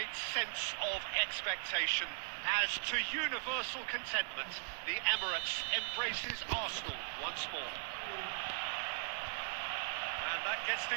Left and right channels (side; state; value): left; silent; digital silence